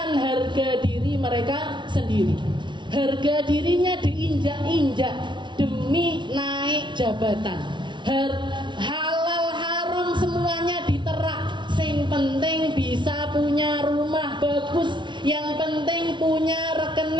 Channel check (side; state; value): left; late; 0.23 ms